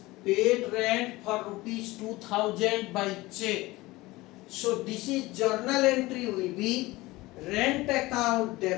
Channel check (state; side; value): quieter; right; 20.0 dB